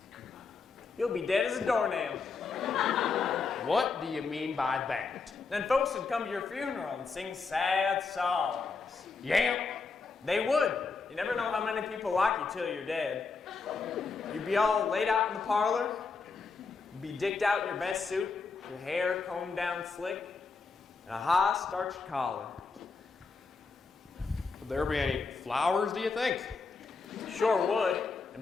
you'll be dead as a doornail. What do you mean by that? Then folks would come to your funeral and sing sad songs. Yeah? They would. You never know how many people like you till you're dead. You'd be all laid out in the parlor, be dicked out in your best suit, your hair combed down slick, and a high starched collar. Would there be any flowers, do you think? Sure would,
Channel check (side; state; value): right; quieter; 4.6 dB